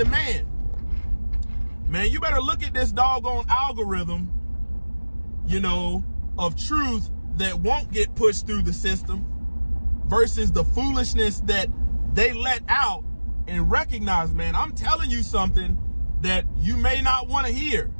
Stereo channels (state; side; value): inverted; both; correlation -1.00